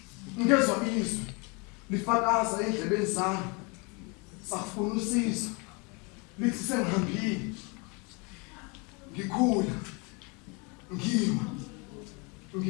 ngezwa izwi lifakaza endlebeni zami safuna usizo lithi sengihambile ngikhula ngima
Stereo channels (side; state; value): right; quieter; 30.8 dB